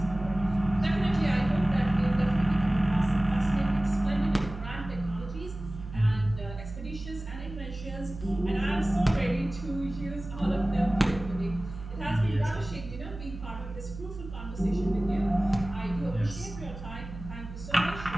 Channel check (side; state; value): right; noise; hum, 11 dB below the sound